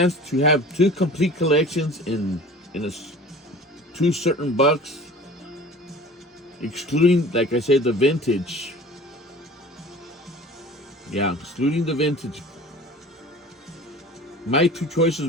to have two complete collections in two certain bucks, excluding, like I said, the vintage. Yeah, excluding the vintage. My two choices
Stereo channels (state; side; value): normal; both; correlation 0.42